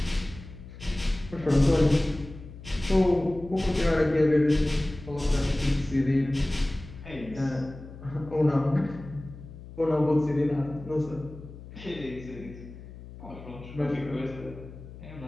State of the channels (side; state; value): left; noise; hum, 15 dB below the sound